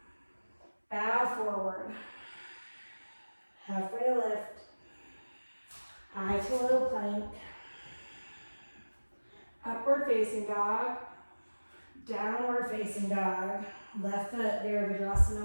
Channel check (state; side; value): inverted; both; correlation -1.00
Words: Bow forward. Halfway lift. High to low plank. Upward facing dog. Downward facing dog. Left foot,